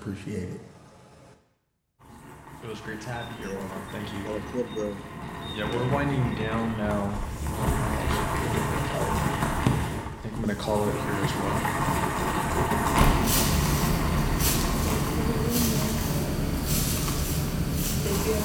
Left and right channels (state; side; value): identical; both; correlation 1.00